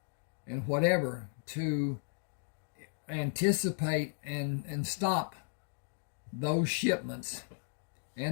and whatever, to anticipate and stop those shipments.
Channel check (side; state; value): right; silent; digital silence